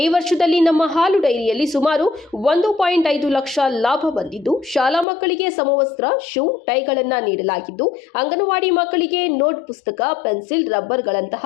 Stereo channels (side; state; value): right; drops out; at 5.1 s